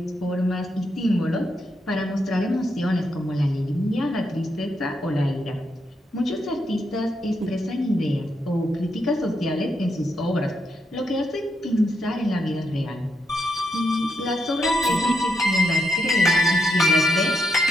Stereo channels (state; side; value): normal; both; correlation 0.80